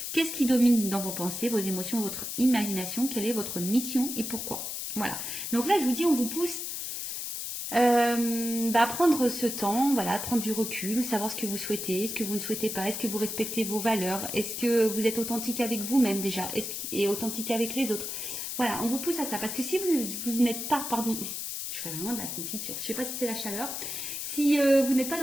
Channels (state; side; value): noise; left; hiss, 5 dB below the sound